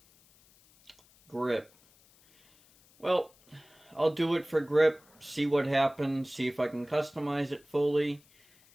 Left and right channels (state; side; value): noise; left; hiss, 30 dB below the sound